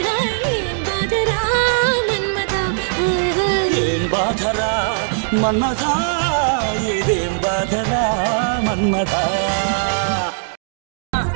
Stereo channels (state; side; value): silent; left; digital silence